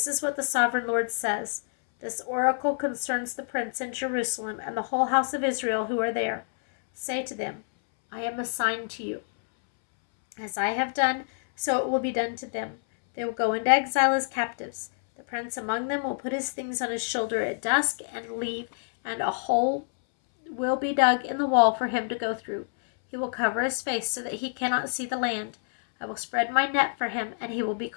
is what the sovereign Lord says. This oracle concerns the prince in Jerusalem and the whole house of Israel who are there. Say to them, I am a sign to you. As I have done, so it will be done to them. They will go into exile as captives. The prince among them will put his things on his shoulder at dusk and leave, and a hole will be dug in the wall for him to go through. He will cover his face so that he cannot see the land. I will spread my net for him, and he will be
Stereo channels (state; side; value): silent; right; 60 dB below the other